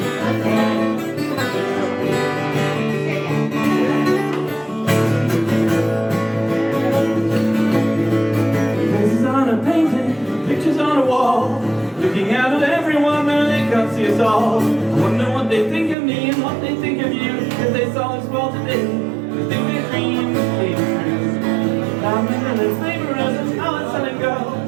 Faces on a painting, pictures on a wall, looking out at everyone but they can't see us all. I wonder what they think of me and what they think of you, if they saw us fall today, they think their dreams came true. Diamonds and their labourers and talents selling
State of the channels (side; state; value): left; drops out; at 16.0 s